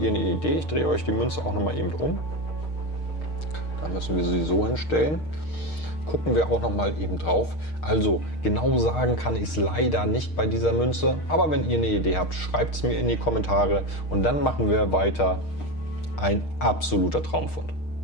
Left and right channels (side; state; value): right; late; 6.5 ms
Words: eine Idee. Ich drehe euch die Münze auch noch mal eben um. Da müssen wir sie so hinstellen. Gucken wir auch noch mal eben drauf. Also genau sagen kann ich es leider nicht bei dieser Münze. Aber wenn ihr eine Idee habt, schreibt es mir in die Kommentare. Und dann machen wir weiter. Ein absoluter Traumfund.